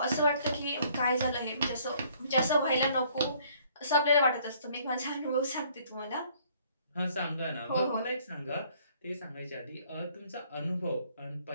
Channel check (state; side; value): inverted; both; correlation -0.61